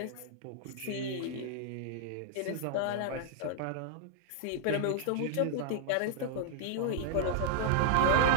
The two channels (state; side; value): different; both; correlation -0.01